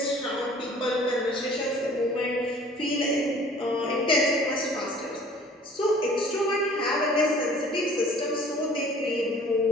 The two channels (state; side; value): normal; both; correlation 0.51